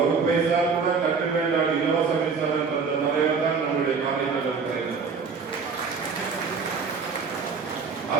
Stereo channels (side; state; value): left; quieter; 5.3 dB